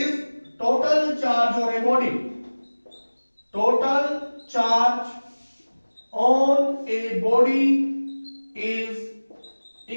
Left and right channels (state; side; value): inverted; both; correlation -1.00